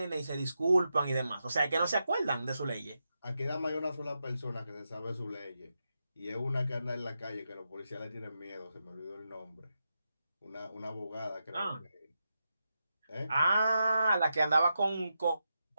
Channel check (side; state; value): both; inverted; correlation -0.87